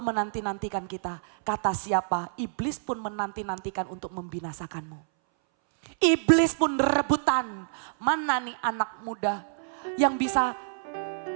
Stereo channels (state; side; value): silent; left; 59 dB below the other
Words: kita, kata siapa? Iblis pun menanti-nantikan untuk membinasakanmu. Iblis pun rebutan, mana nih anak muda yang bisa,